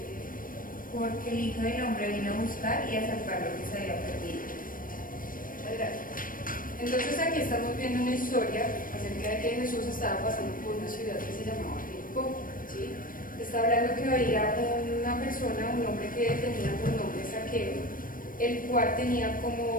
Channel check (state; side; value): late; right; 0.40 ms